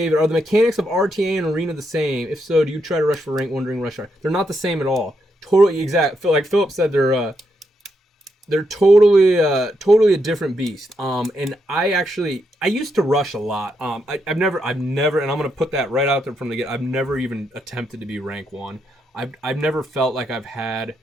are the mechanics of RTA and Arena the same? If so, do you try to rush for rank 1 during rush hour? They're not the same at all. Totally exact. Like Philip said, they're totally a different beast. And I used to rush a lot. I've never, and I'm gonna put that right out there from the get. I've never even attempted to be rank 1. I've never felt like I've had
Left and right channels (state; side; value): normal; both; correlation 0.80